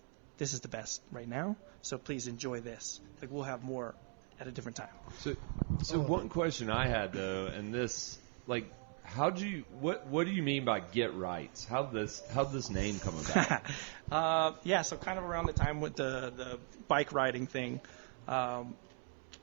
this is the best right now. So please enjoy this. Like, we'll have more at a different time. So one question I had though, and this, like, what do you mean by get right? How'd this name come about? So kind of around the time with the bike riding thing,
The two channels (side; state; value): left; quieter; 39.7 dB